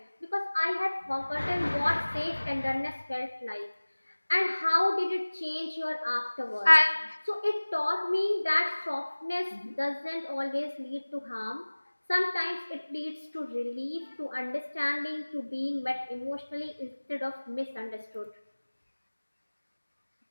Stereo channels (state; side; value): inverted; both; correlation -1.00